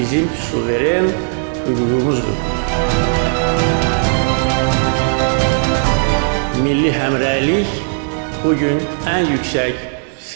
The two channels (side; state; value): left; silent; 69 dB below the other